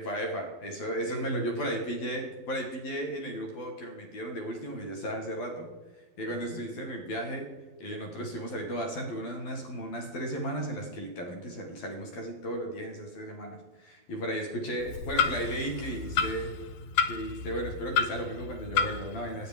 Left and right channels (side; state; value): right; late; 12 ms